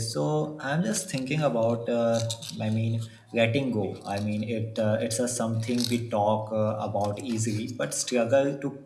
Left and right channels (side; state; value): both; identical; correlation 1.00